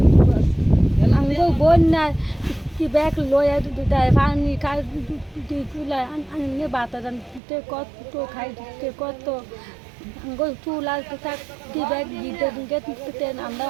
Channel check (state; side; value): drops out; left; at 7.4 s